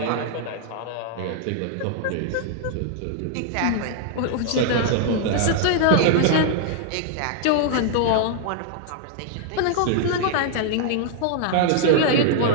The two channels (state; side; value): different; both; correlation 0.00